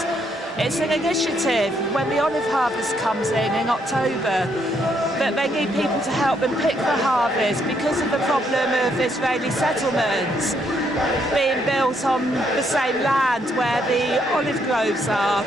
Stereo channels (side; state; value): both; normal; correlation 0.73